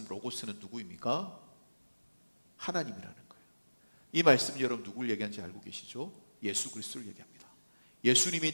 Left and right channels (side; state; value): both; inverted; correlation -1.00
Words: 로고스는 누구입니까? 하나님이라는 거예요. 이 말씀 여러분 누구를 얘기하는지 알고 계시죠? 예수 그리스도를 얘기합니다.